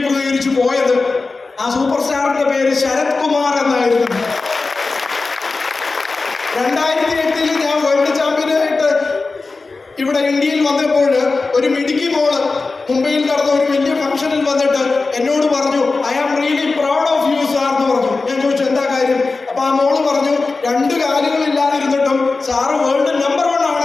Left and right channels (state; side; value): quieter; right; 3.8 dB